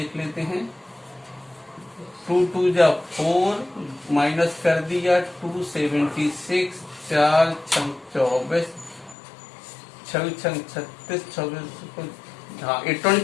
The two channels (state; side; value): drops out; right; at 9.2 s